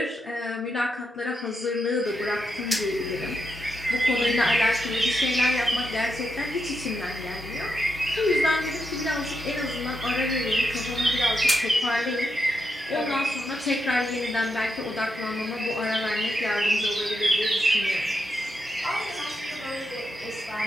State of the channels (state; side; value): normal; both; correlation 0.84